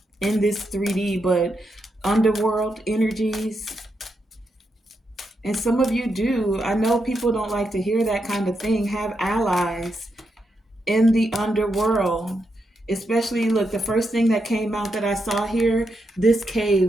this 3D, but underworld energies. And some of you do, I know people don't like to hear that kind of thing, have allies in the underworld. Especially, look, the first thing that came out that I saw here, this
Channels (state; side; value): normal; both; correlation 0.83